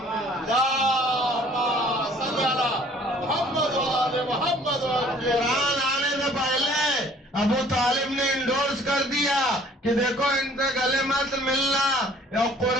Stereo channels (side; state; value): both; normal; correlation 0.55